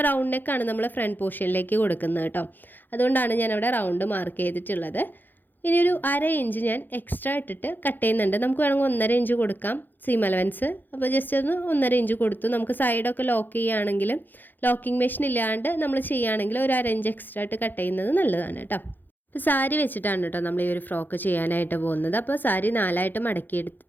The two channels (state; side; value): late; right; 0.089 ms